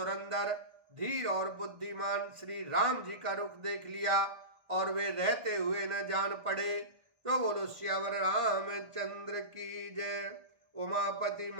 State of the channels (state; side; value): late; left; 1.5 ms